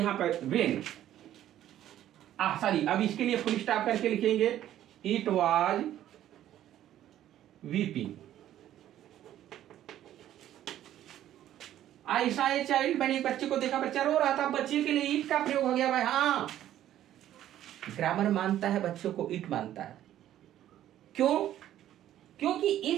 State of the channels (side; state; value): left; quieter; 12.2 dB